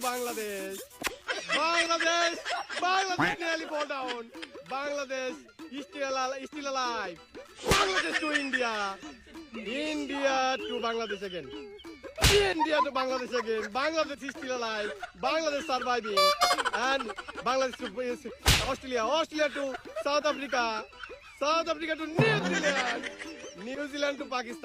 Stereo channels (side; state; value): both; identical; correlation 1.00